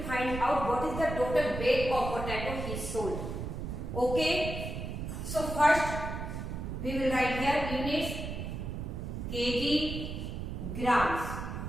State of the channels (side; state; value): right; noise; rumble, 5 dB below the sound